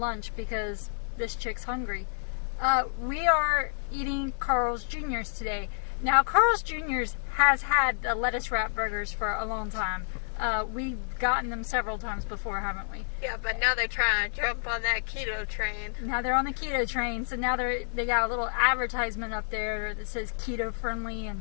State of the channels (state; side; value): silent; right; digital silence